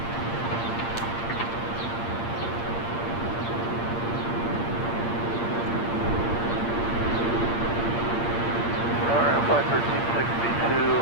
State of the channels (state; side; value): late; right; 8.7 ms